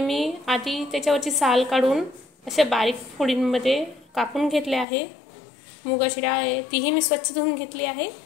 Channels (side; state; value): right; drops out; at 4.9 s